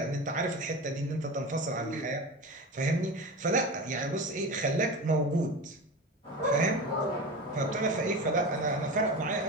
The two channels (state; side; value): normal; both; correlation 0.27